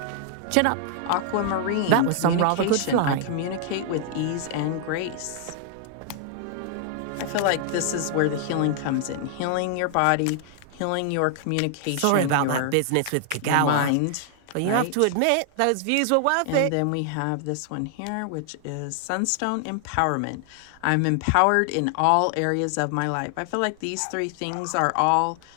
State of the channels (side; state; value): both; different; correlation 0.00